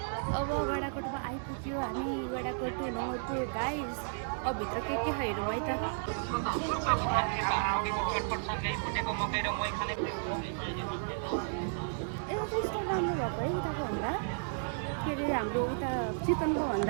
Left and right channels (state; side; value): silent; left; digital silence